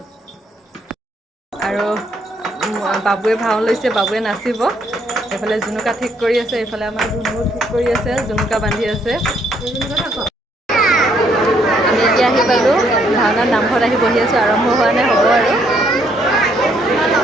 আৰু বাবুৱে ভাও লৈছে, বাবুৱে নাচিব। এইফালে জুনুকা ঠিক কৰি আছে, এইফালে আমাৰ ধুনুও ঠিক কৰি আছে, জুনুকা বান্ধি আছে। আমি এতিয়া আহি পালোঁ ভাওনাত, নামঘৰত আহি বহি আছোঁ। আৰম্ভ হোৱা নাই, হ'ব আৰু।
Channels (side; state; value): both; normal; correlation 0.70